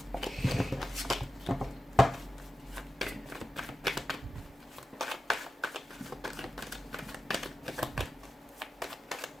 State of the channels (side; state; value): both; normal; correlation 0.92